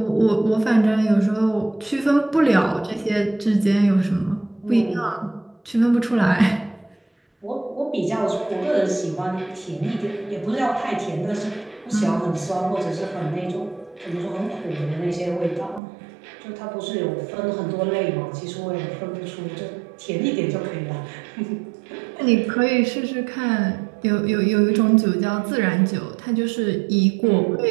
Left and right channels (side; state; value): left; drops out; at 15.8 s